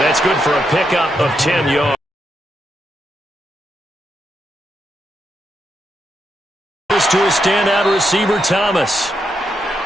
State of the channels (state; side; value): normal; both; correlation 0.82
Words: that's good for a pickup of 10 yards. To a standout receiver, Thomas.